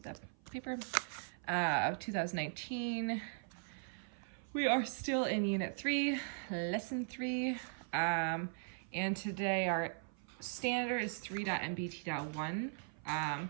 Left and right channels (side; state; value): left; silent; 52 dB below the other